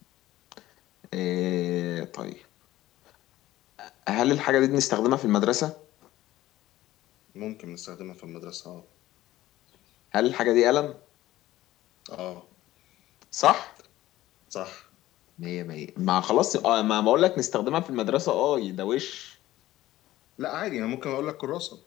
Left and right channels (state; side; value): quieter; right; 15.5 dB